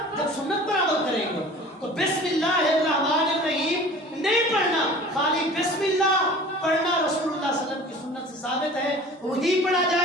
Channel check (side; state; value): both; normal; correlation 0.43